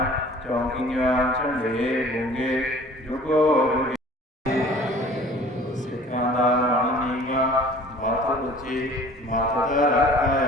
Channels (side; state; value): both; normal; correlation 0.48